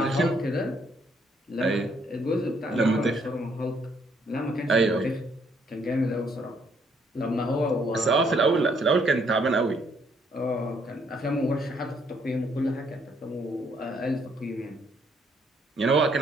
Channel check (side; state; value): both; normal; correlation 0.69